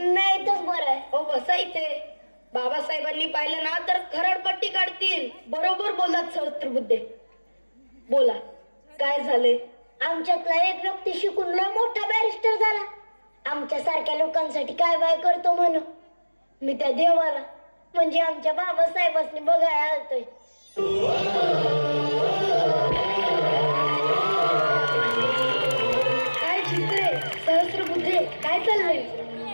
इथंच बरं आहे. हो बसा इथे. बाबासाहेबांनी पाहिलं ना तर खरडपट्टी काढतील. बरोबर बोललात सहस्त्रबुद्धे. बोला, काय झाले? आमच्यातला एक व्यक्ती शिकून लय मोठा बॅरिस्टर झाला. आमच्या सारख्या लोकांसाठी काय बाय करतो म्हणून मी त्या देवाला म्हणजे आमच्या बाबासाहेबांनी बघायला आलतोय. काय चित्रे, सहस्त्रबुद्धे, काय चाललंय?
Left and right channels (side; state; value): both; inverted; correlation -1.00